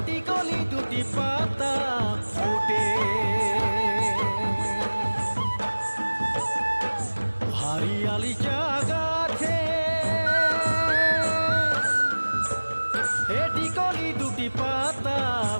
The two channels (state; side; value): inverted; both; correlation -1.00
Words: কলি দুটি পাতা ফুটে। হারিয়ালি চা গাছে এটি কলি দুটি পাতা